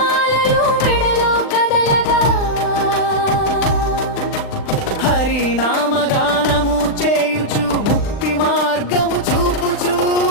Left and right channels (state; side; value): late; right; 39 ms